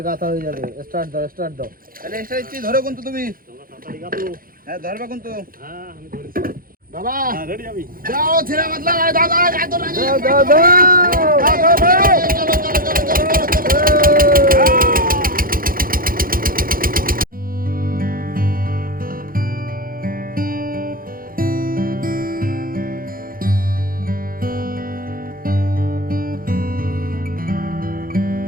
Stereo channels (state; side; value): late; left; 0.42 ms